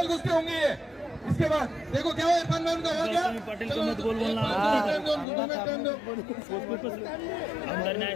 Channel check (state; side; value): drops out; right; at 5.2 s